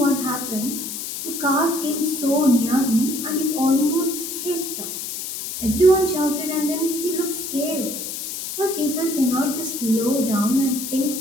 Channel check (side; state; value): left; noise; hiss, 6 dB below the sound